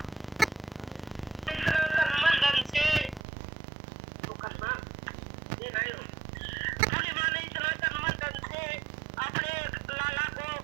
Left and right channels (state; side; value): drops out; left; at 3.2 s